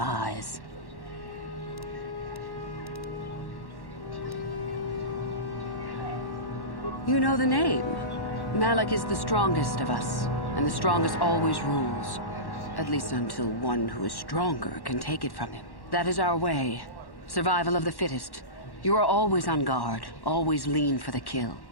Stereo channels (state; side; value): late; right; 1.1 ms